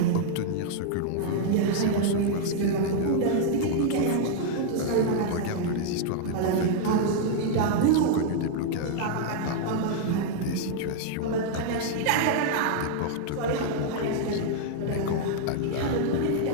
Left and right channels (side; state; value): both; different; correlation -0.01